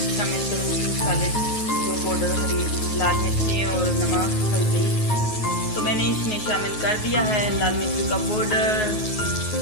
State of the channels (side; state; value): right; late; 9.4 ms